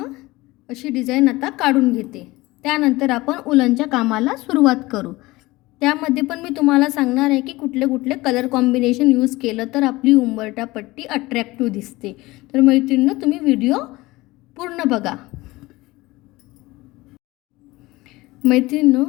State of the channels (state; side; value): quieter; right; 20.2 dB